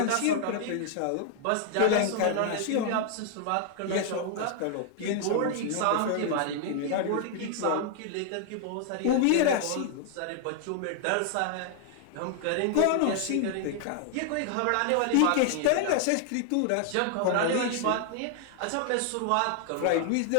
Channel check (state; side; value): different; both; correlation 0.00